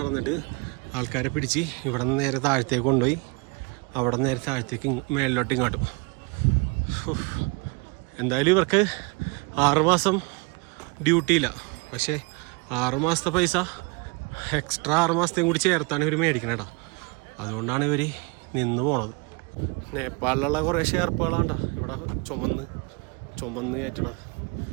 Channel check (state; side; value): quieter; left; 29.5 dB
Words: ആൾക്കാരെ പിടിച്ച് ഇവിടെ നിന്ന് നേരെ താഴത്തേക്ക് കൊണ്ടുപോയി അവിടെ നിന്ന് നേരെ താഴത്തേക്ക് മേലിലോട്ട് ഇങ്ങോട്ടും. എന്തായാലും ഇവർക്ക് 6 മാസം ഡ്യൂട്ടിയില്ല. പക്ഷേ 6 മാസത്തെ പൈസ എക്സ്ട്രാ 6 മാസത്തെയും കൂടി ചേർത്താണ് ഇവർ മേടിക്കണേടാ. അതുകൊണ്ടാണ് ഇവർ നിന്ന് പോണത്. നേപ്പാളിലുള്ള കുറേ ഷെയർപ്പുകളാണ്ടാ ഇവിടെ ചുമന്ന് കയറ്റണത്.